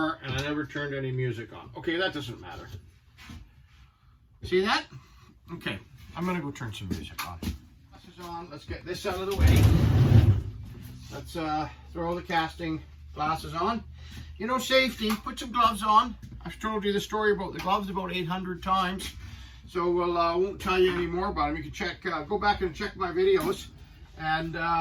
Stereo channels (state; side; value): identical; both; correlation 1.00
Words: never turned any music on. Okay, that doesn't matter. See that? Okay, I'm gonna go turn some music on. Glasses on, let's get this out of the way. Let's throw the casting glasses on. You know, safety, put some gloves on. I've told you the story about the gloves about 800 times. So we'll, won't tell you any more about them. You can check, go back and check my videos and